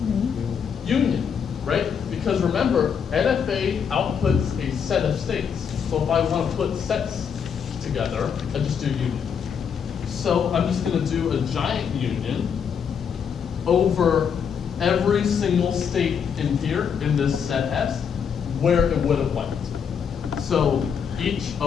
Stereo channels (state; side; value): quieter; right; 7.1 dB